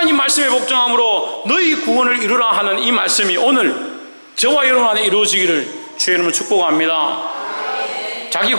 말씀에 복종함으로 너희 구원을 이루라 하는 이 말씀이 오늘 저와 여러분 안에 이루어지기를 주의 이름으로 축복합니다. 자기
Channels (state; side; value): inverted; both; correlation -1.00